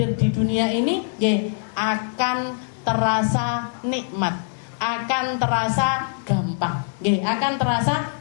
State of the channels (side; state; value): right; silent; digital silence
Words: di dunia ini akan terasa nikmat, akan terasa gampang,